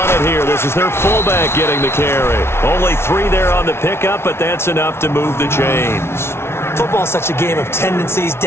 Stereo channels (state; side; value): late; right; 0.12 ms